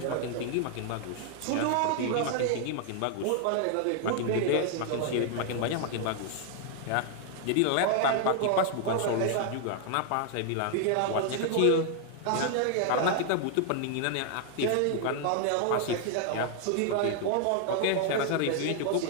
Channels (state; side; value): different; both; correlation 0.00